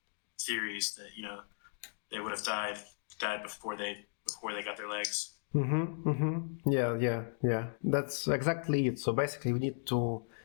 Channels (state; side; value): silent; right; digital silence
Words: theories, that they would have died before they got their legs. Yeah. That's exactly it. So basically, we need to